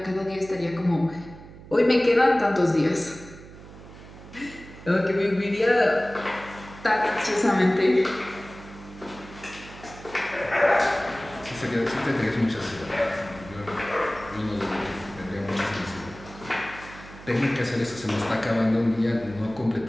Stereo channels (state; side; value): noise; right; hum, 17 dB below the sound